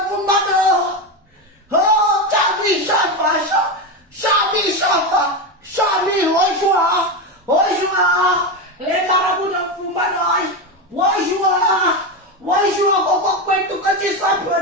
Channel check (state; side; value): normal; both; correlation 0.15